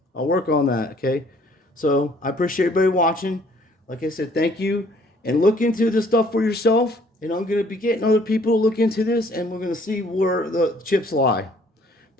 I'll work on that, okay? So I appreciate everybody watching. Like I said, thank you. And look into this stuff for yourself. And I'm going to be getting other people to look into this. And we're going to see where the chips lie.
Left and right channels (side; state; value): both; normal; correlation 0.60